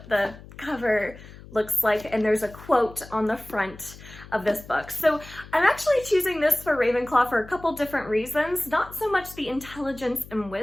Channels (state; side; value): noise; left; hum, 18 dB below the sound